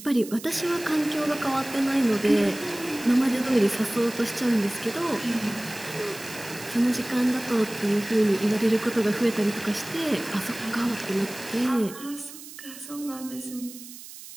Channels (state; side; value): noise; right; hiss, 15 dB below the sound